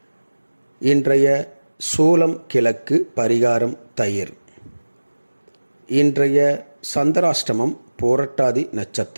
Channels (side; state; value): both; inverted; correlation -1.00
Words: இன்றைய சூலம் கிழக்கு, பரிகாரம் தயிர். இன்றைய சந்திராஷ்டமம் போரட்டாதி